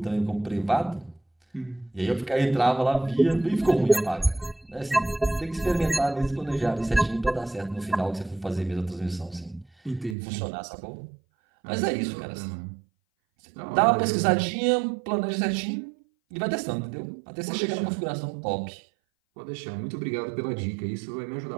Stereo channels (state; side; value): drops out; left; at 10.2 s